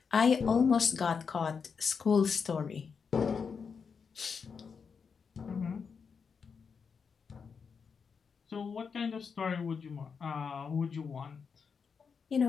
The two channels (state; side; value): quieter; right; 5.9 dB